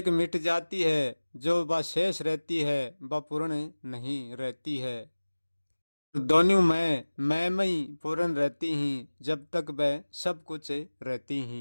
मिट जाती है, जो वह शेष रहती है वह पूर्ण नहीं रहती है। दोनों मैं में ही पूर्ण रहती ही जब तक वह सब कुछ रहती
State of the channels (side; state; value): both; inverted; correlation -1.00